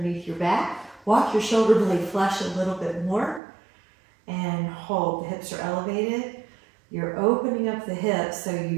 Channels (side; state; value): left; drops out; at 3.4 s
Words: your back. Walk your shoulder blade flesh a little bit more and hold. The hips are elevated. You're opening up the hips so